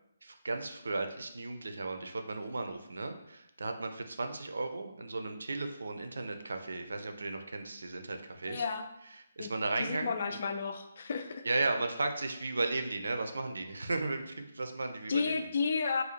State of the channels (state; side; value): inverted; both; correlation -0.85